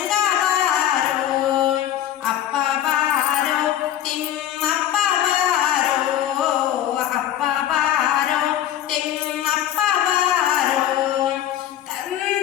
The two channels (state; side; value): quieter; right; 11.5 dB